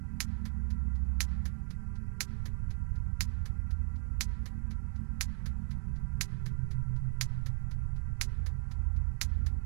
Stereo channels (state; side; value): silent; left; digital silence